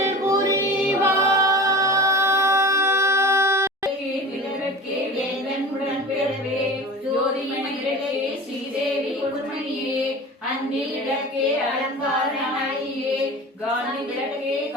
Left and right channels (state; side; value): normal; both; correlation 0.35